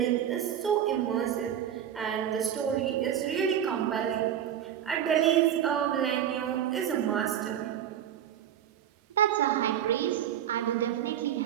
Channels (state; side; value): quieter; left; 10.0 dB